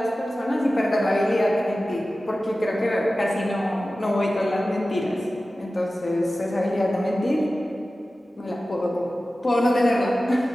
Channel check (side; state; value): both; normal; correlation 0.95